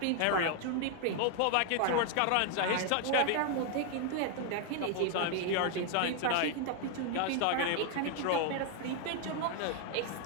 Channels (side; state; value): both; different; correlation 0.00